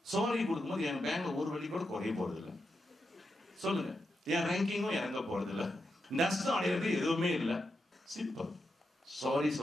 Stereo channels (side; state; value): both; normal; correlation 0.86